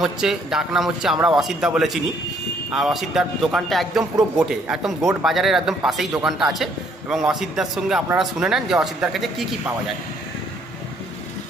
হচ্ছে, ডাক নাম হচ্ছে আমরা অসিতদা বলে চিনি। আর অসিতদার দোকানটা একদম পুরো গোটে, একদম গোট বাজারের একদম পাশেই দোকানটা আছে। এবং অসিতদার সঙ্গে আপনারা শুনে নেন যে অসিতদার কাছে কী কী পাওয়া যায়।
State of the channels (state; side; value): normal; both; correlation 0.66